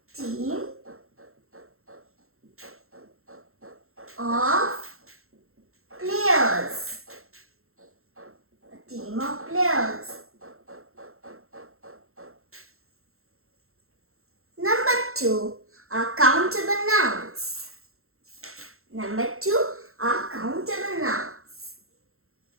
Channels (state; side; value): late; left; 0.62 ms